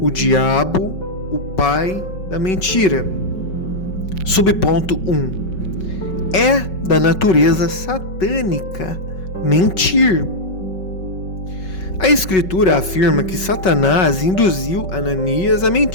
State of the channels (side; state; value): right; late; 5.3 ms